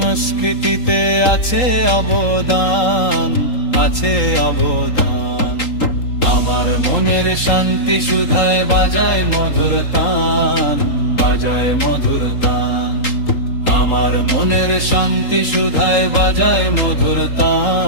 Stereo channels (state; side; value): late; right; 3.8 ms